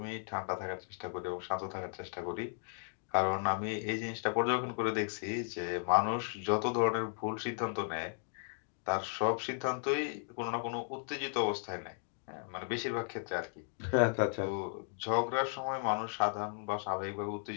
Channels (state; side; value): silent; right; digital silence